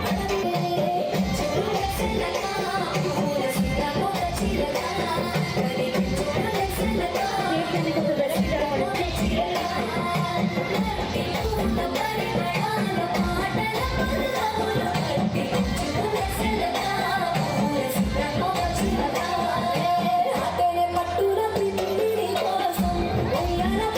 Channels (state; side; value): identical; both; correlation 1.00